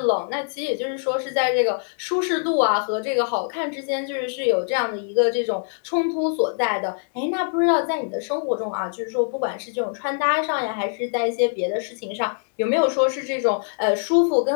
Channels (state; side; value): silent; right; 59 dB below the other